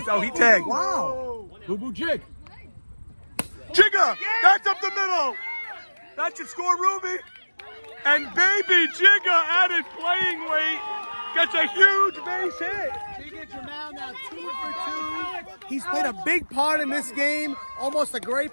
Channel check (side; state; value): both; inverted; correlation -1.00